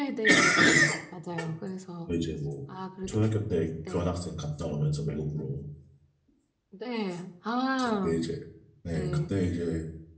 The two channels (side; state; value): both; identical; correlation 1.00